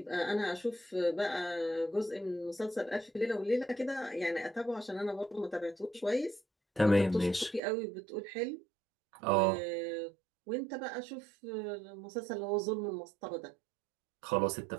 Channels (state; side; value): drops out; left; at 7.6 s